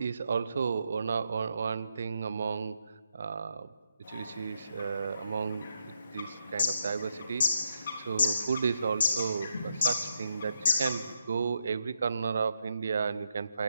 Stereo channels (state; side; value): inverted; both; correlation -0.81